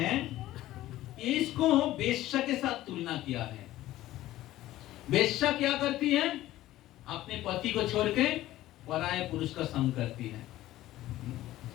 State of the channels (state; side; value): quieter; right; 15.2 dB